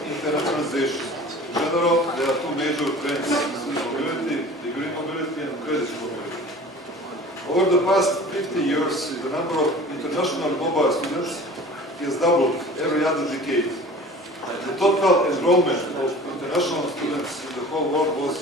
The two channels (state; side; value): normal; both; correlation 0.42